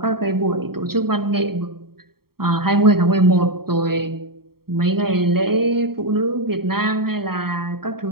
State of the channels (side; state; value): left; late; 0.94 ms